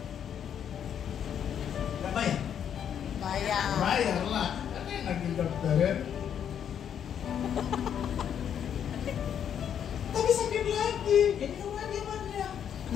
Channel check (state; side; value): quieter; right; 8.8 dB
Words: Nggak bayar? Bayar lah. Kan enak di dokter ya. Tapi sakit lagi, minum lagi obatnya.